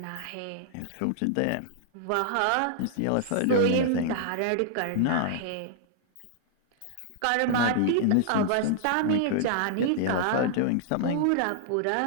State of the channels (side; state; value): both; different; correlation -0.01